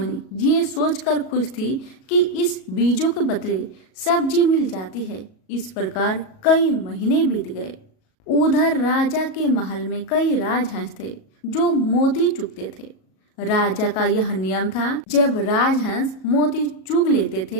ये सोचकर खुश थी कि इस बीजों के बदले सब्जी मिल जाती है। इस प्रकार कई महीने बीत गए। उधर राजा के महल में कई राजहंस थे जो मोती चुगते थे। राजा का यह नियम था, जब राजहंस मोती चुग लेते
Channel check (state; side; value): late; right; 37 ms